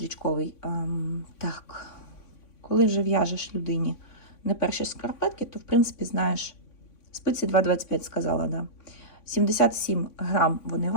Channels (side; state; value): right; late; 3.5 ms